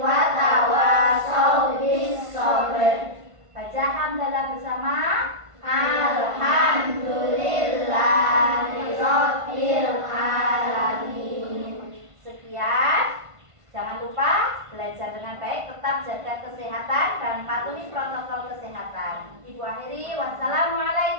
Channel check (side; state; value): left; late; 1.5 ms